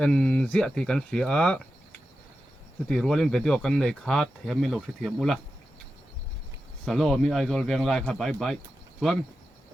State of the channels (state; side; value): normal; both; correlation 0.91